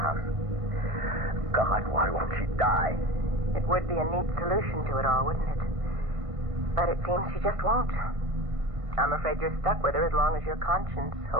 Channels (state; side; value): late; left; 1.5 ms